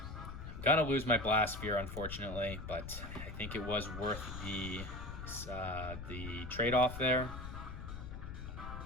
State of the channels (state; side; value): noise; left; rumble, 8 dB below the sound